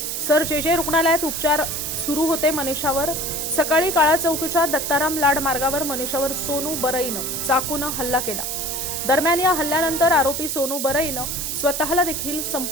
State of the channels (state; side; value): noise; right; hiss, 3 dB below the sound